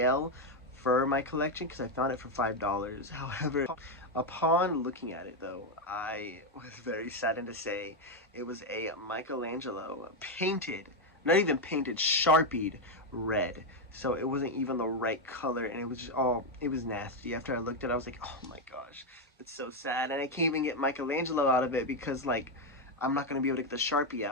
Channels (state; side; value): normal; both; correlation 0.05